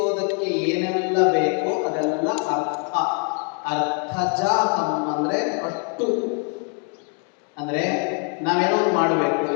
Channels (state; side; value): quieter; right; 39.9 dB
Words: ಏನೆಲ್ಲ ಬೇಕೋ ಅದೆಲ್ಲ ಅರ್ಥ. ಅರ್ಥಜಾತಂ ಅಂದ್ರೆ ಅಷ್ಟು. ಅಂದ್ರೆ ನಾವೇನೋ ಒಂದು ಮಾಡಬೇಕು.